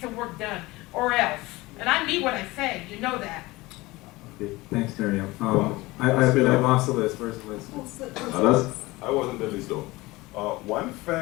work done, or else. And I mean what I say, you know that. Okay, thanks, Miriam. I lost the list, where's the list? I wasn't the list though. One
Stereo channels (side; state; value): right; quieter; 20.9 dB